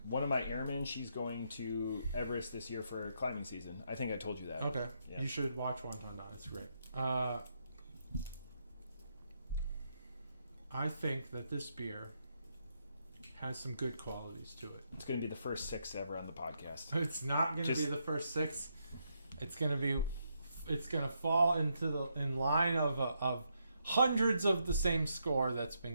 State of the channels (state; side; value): inverted; both; correlation -0.79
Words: One of my airmen, she's going to Everest this year for climbing season. I think I told you that. Okay, yeah. You should watch Wonton Don. It's great. I think that this beer has some good qualities to it. It's going to be the first 6 ever on the podcast. It's not going to be the first 6. It's going to fall in line of hundreds of the same score that's